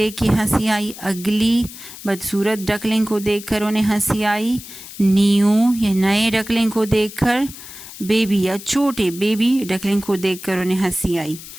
के हंसी आई। अगली, बदसूरत डकलिंग को देखकर उन्हें हंसी आई। न्यू, या नए डकलिंग को देखकर। बेबी, या छोटे बेबी डकलिंग को देखकर उन्हें हंसी आई।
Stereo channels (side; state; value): left; noise; hiss, 15 dB below the sound